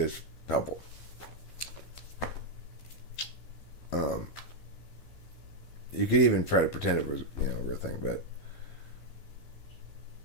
helpful. You could even try to pretend it was, a real thing, but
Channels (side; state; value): right; late; 12 ms